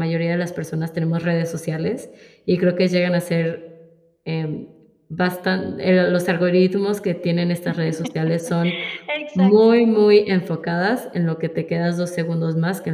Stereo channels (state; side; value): identical; both; correlation 1.00